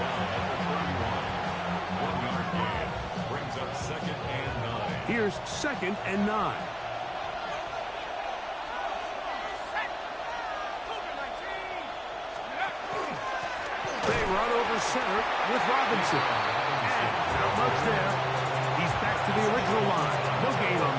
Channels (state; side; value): identical; both; correlation 1.00